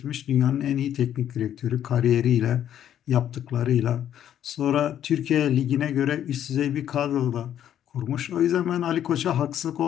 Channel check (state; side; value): quieter; right; 10.5 dB